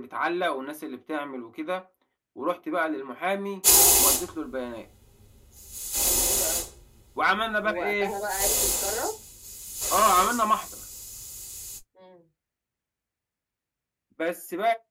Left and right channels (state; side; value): identical; both; correlation 1.00